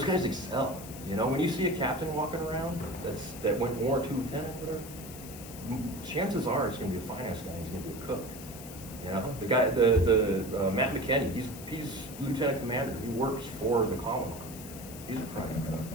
guys excel, you know? When you see a captain walking around that went warrant, 2 lieutenant, whatever, chances are it's going to be a finance guy, he's going to be a cook. You know, the guy, the Matt McKinney, he's lieutenant commander. He works for the Commandant. He's a private cook.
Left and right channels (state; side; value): noise; left; hiss, 14 dB below the sound